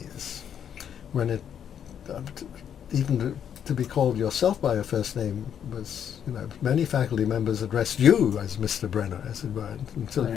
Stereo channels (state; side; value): quieter; right; 8.7 dB